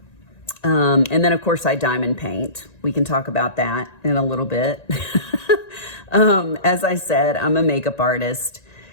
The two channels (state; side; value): late; right; 1.9 ms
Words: And then of course I diamond paint. We can talk about that in a little bit. As I said, I'm a makeup artist.